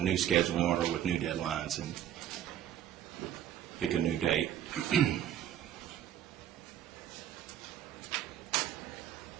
new scheduling order with new deadlines and pick a new date.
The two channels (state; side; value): quieter; left; 10.9 dB